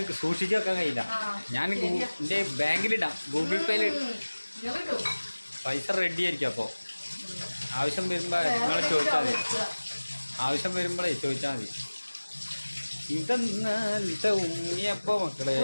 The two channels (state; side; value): inverted; both; correlation -1.00